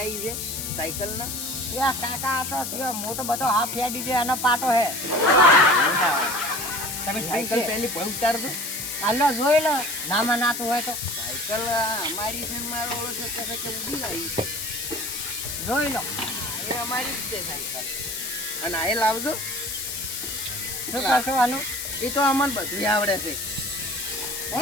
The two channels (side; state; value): left; noise; hiss, 5 dB below the sound